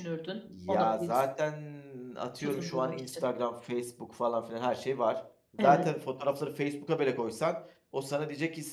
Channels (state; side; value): identical; both; correlation 1.00